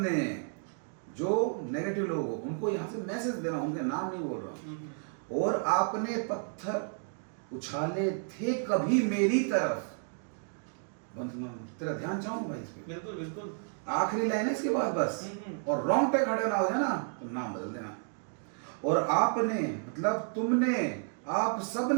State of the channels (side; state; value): left; silent; 57 dB below the other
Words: जो नेगेटिव लोग हो उनको यहाँ से मैसेज दे रहा हूँ, उनके नाम नहीं बोल रहा हूँ। और आपने पत्थर उछाले थे कभी मेरी तरफ, तेरा ध्यान चाहूँ भाई इस पे, बिल्कुल बिल्कुल, आखिरी लाइन है इसके बाद बस, और रॉन्ग पे खड़े ना हो जाए ना तो नाम बदल देना। और आपने मतलब तुमने, आप